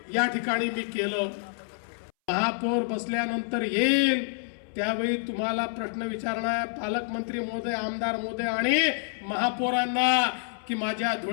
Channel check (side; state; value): right; silent; 60 dB below the other